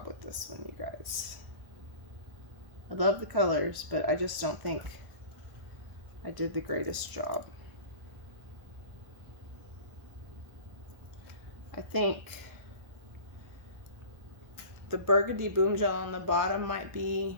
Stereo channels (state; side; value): late; left; 1.4 ms